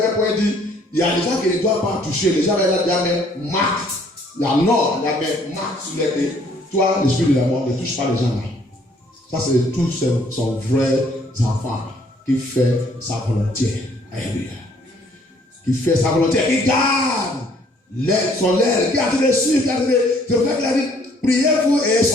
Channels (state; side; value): normal; both; correlation 0.62